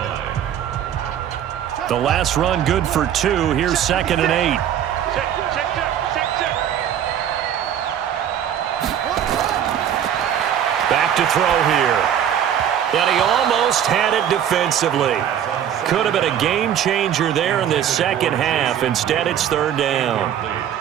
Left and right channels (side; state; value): left; quieter; 9.7 dB